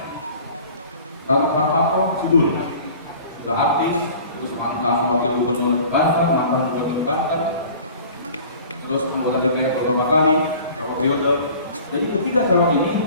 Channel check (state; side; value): inverted; both; correlation -0.45